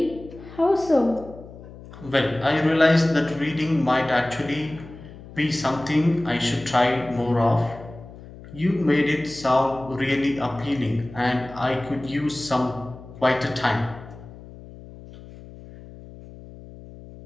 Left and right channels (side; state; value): left; noise; hum, 17 dB below the sound